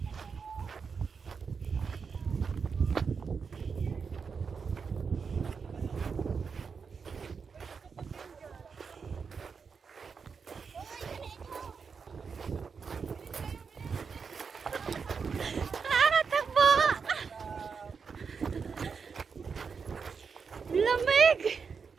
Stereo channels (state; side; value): quieter; left; 5.7 dB